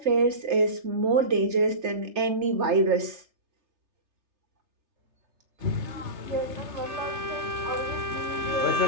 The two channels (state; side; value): late; left; 3.3 ms